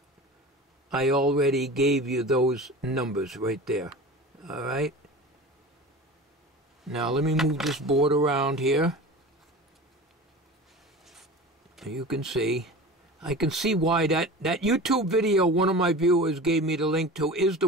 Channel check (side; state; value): both; normal; correlation 0.35